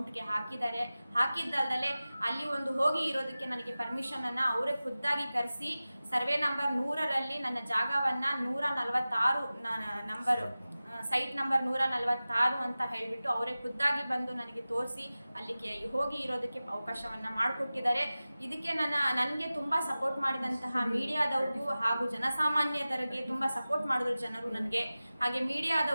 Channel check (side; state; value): both; inverted; correlation -0.97